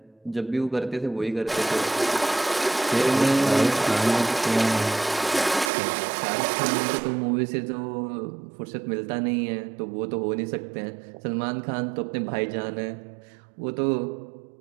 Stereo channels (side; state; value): left; drops out; at 5.7 s